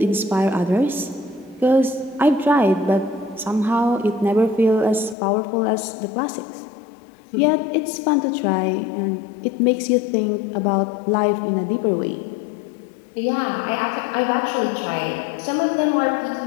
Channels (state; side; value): drops out; right; at 5.2 s